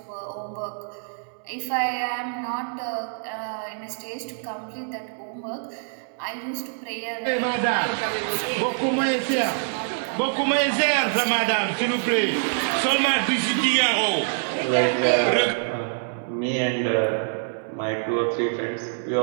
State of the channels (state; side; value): silent; left; digital silence